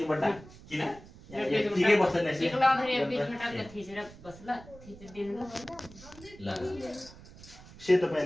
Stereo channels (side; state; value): right; noise; rumble, 19 dB below the sound